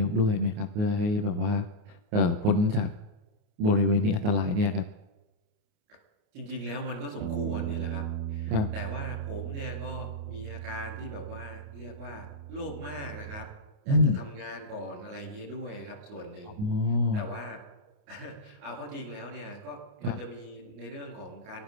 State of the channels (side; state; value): left; late; 29 ms